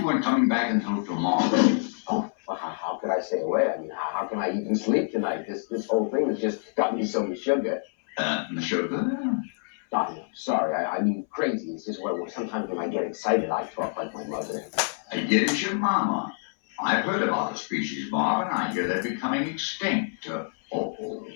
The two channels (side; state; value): right; silent; 60 dB below the other